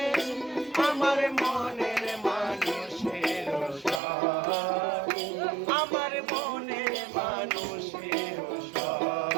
আমার মনের মানুষের সাথে, আমার মনের মানুষের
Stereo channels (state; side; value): drops out; left; at 4.0 s